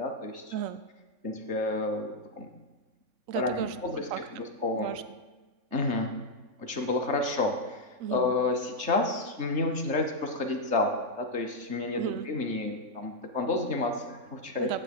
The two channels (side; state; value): left; late; 3.6 ms